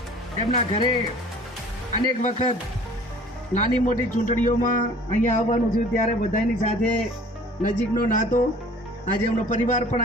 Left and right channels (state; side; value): normal; both; correlation 0.49